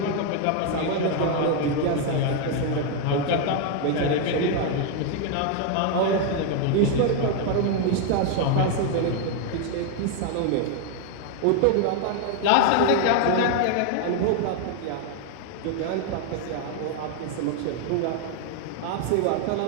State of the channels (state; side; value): different; both; correlation 0.00